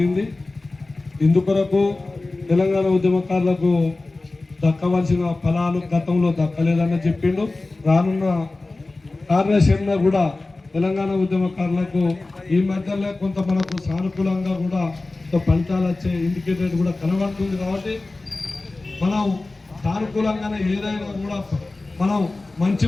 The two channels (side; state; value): right; quieter; 3.2 dB